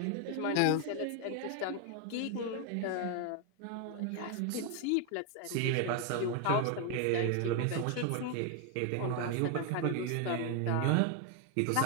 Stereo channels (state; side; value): different; both; correlation 0.01